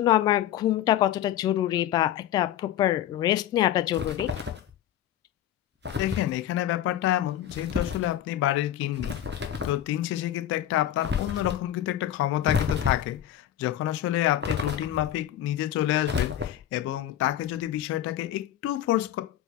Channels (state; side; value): quieter; right; 11.7 dB